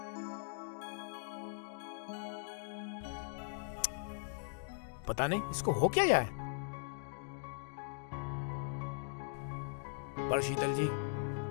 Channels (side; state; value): right; silent; digital silence